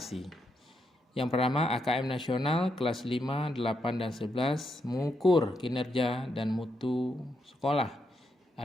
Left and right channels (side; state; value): both; normal; correlation 0.81